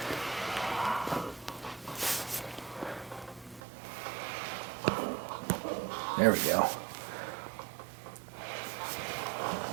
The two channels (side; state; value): left; drops out; at 3.6 s